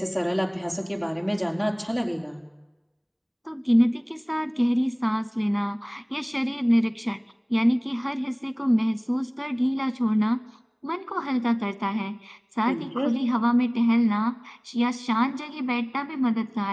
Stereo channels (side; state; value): both; identical; correlation 1.00